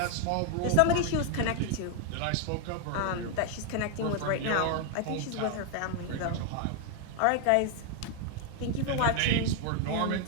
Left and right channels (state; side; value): different; both; correlation 0.00